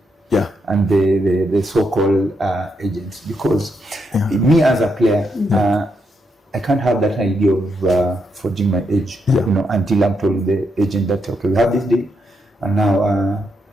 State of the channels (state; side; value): normal; both; correlation 0.80